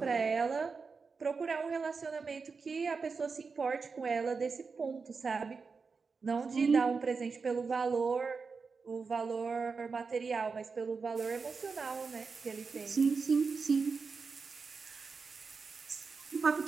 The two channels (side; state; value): left; quieter; 4.9 dB